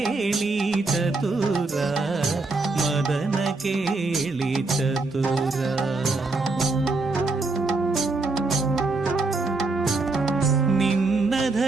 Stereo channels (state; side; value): quieter; left; 3.5 dB